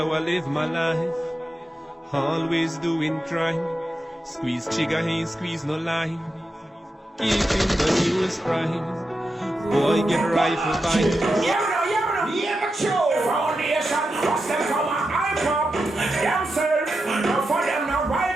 I live my life. Always doing crime. Squeeze trigger, ain't squeeze no line. Keeping the news prime. Boy get rifle bind. Yeah, but you foundation, what's them from a hype up themselves, no for them no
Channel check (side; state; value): both; normal; correlation 0.89